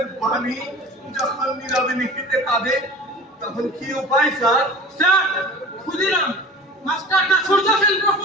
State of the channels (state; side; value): normal; both; correlation 0.39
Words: বাণী যখন নীরবে নিহিতে কাঁদে, তখন কি উপায় স্যার? স্যার, ক্ষুদিরাম, মাস্টার না সূর্য সেন,